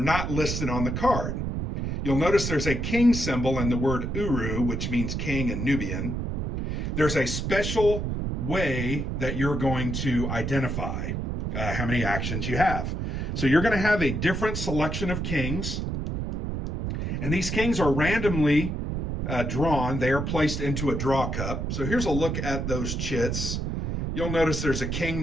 listed on the card. You'll notice there's a king symbol and the word Uru, which means king in Nubian. There's a special way that you're going to identify how many actions you have. So you're going to have a different selection of kings, and these kings are randomly drawn. They are placed into a draw cup. So here's a look at those chits. You'll notice there's a king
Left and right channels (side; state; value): right; noise; rumble, 2 dB below the sound